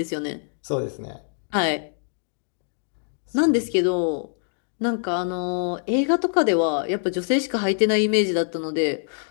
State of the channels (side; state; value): right; silent; digital silence